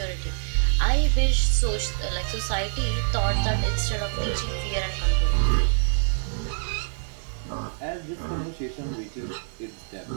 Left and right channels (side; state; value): left; silent; digital silence